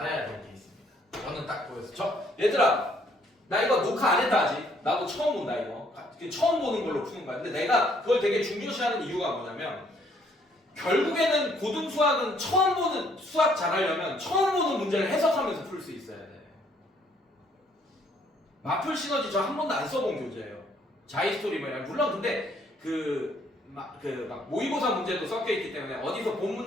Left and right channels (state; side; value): normal; both; correlation 0.65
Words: 될 게 있습니다. 저는 딱 보였어. 얘들아, 나 이거 녹화 안 했다 아직. 나도 처음 본다 이거. 처음 보는 걸로 푸는 거야. 근데 내가 그걸 되게 중요시하는 이유가 뭐냐면 결국에는 고등수학은 처음 보는 수학 잘하려면 처음 보는 문제를 해석하면서 풀 수 있어야 돼. 마플 시너지 저 한 번도 안 써본 교재예요. 자이스토리 뭐냐. 물론 근데 막 모의고사 문제도 섞여 있기 때문에 어디서 본